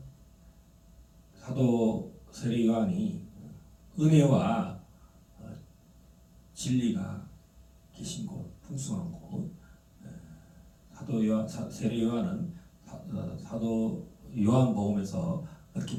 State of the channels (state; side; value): identical; both; correlation 1.00